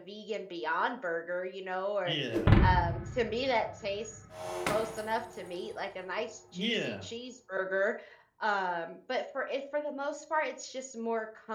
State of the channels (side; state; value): both; identical; correlation 1.00